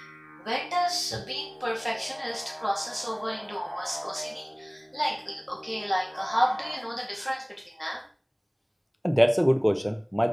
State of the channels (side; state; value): both; identical; correlation 1.00